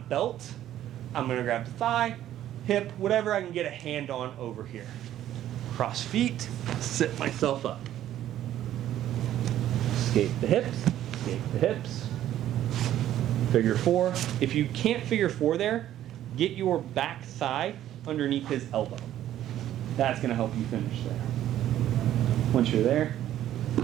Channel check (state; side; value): quieter; left; 12.2 dB